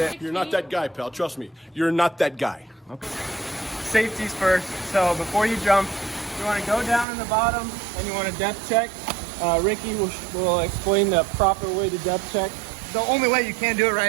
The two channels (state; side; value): drops out; left; at 7.1 s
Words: You're not that guy, pal. Trust me. You're not that guy. Okay. Safety's first. So before you jump, you want to go down in the bottom and you want to depth check. Ricky will explain the proper way to depth check. The only way you can do it